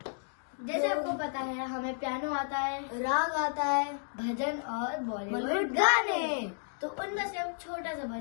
जैसे आपको पता है हमें पियानो आता है, राग आता है, भजन और बॉलीवुड गाने। तो उनमें से हम छोटा सा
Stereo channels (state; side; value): silent; right; digital silence